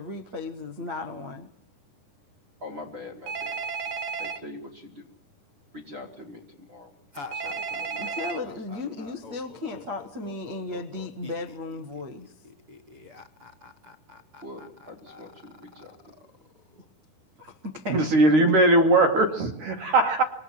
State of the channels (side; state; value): left; late; 9.9 ms